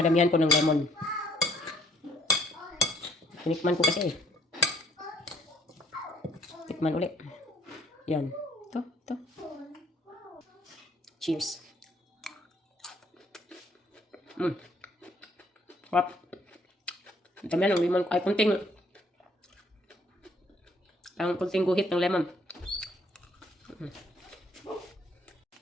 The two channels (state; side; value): normal; both; correlation 0.63